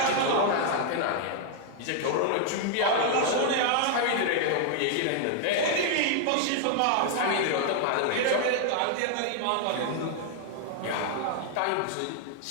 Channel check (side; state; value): both; different; correlation 0.00